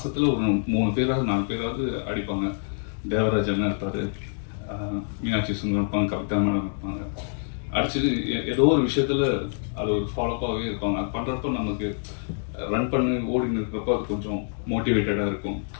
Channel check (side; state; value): right; silent; digital silence